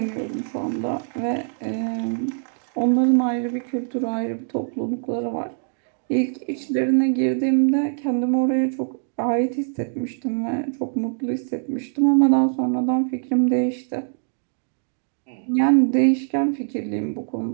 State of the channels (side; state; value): left; silent; 63 dB below the other